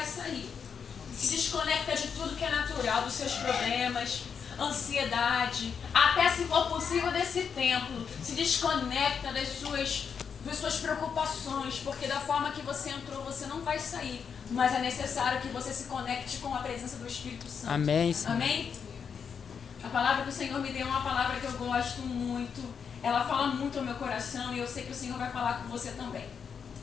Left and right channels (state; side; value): quieter; right; 6.7 dB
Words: sair. Se desconecta de tudo que é natural, dos seus problemas, ansiedade, até se for possível desse templo. Se desconecta das suas preocupações, porque da forma que você entrou, você não vai sair. Mas é necessário que você se conecte com a presença do Espírito Santo. Amém, Senhor. Amém? A palavra do Senhor me deu uma palavra que eu gosto muito. Ela fala muito ao meu coração e eu sei que o Senhor vai falar com você também.